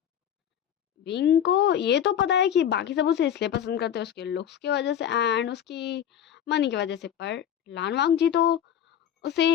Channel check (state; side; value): quieter; right; 9.6 dB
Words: विंग को ये तो पता है कि बाकी सब उसे इसलिए पसंद करते हैं उसके लुक्स की वजह से एंड उसकी मनी की वजह से। पर लान वांगजी तो